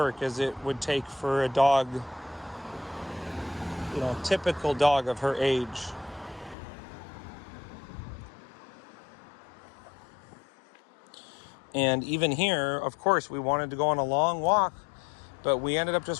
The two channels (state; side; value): drops out; right; at 6.6 s